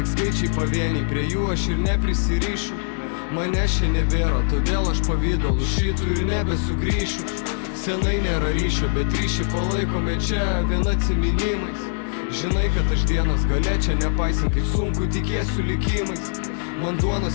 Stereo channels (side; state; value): right; silent; digital silence